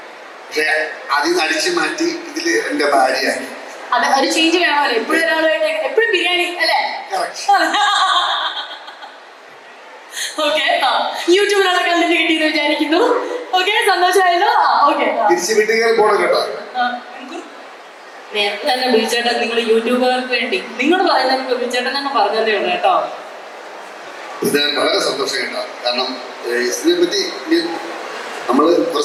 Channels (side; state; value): both; identical; correlation 1.00